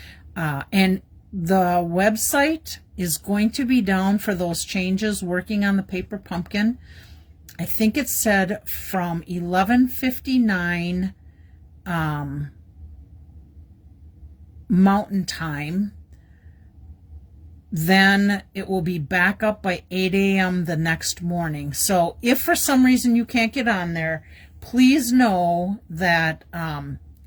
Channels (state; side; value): identical; both; correlation 1.00